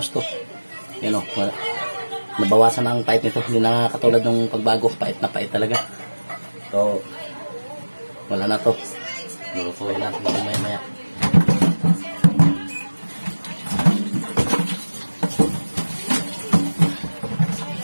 gusto. Yan nabawasan ang pait nito. Hindi na katulad ng pagbago, pait na pait talaga. So, wala na to. Lulutuin natin ito maya.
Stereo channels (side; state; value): both; inverted; correlation -1.00